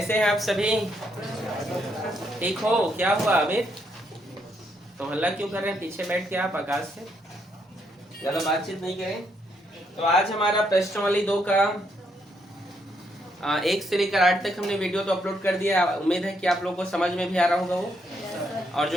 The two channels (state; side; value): normal; both; correlation 0.75